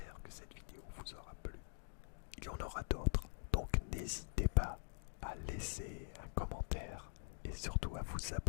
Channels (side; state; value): right; silent; digital silence